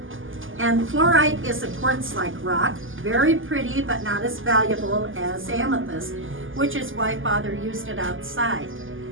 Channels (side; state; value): left; late; 0.58 ms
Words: And fluorite is a quartz-like rock, very pretty but not as valuable as amethyst, which is why Father used it outside.